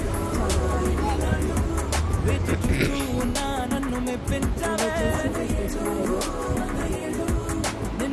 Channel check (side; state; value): both; identical; correlation 1.00